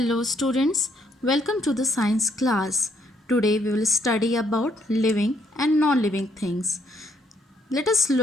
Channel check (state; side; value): normal; both; correlation 0.71